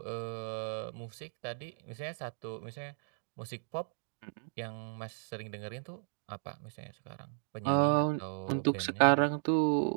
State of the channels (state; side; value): silent; left; digital silence